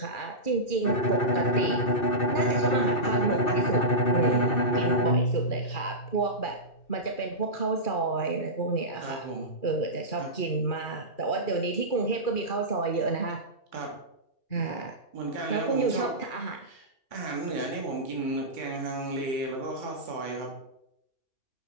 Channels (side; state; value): right; late; 2.4 ms